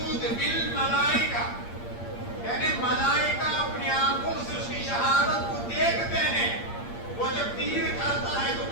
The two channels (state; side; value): late; right; 8.6 ms